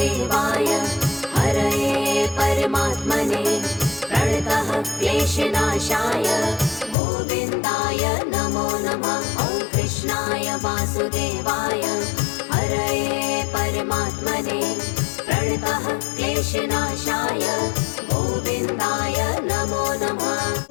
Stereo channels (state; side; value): drops out; right; at 7.0 s